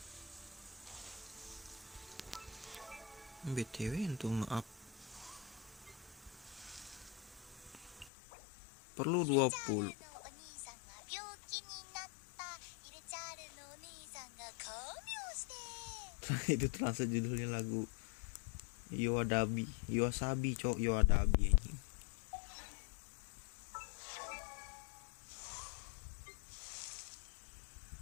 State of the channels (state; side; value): drops out; right; at 8.1 s